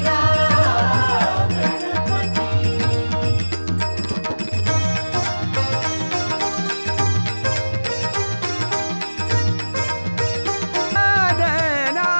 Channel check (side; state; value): both; inverted; correlation -1.00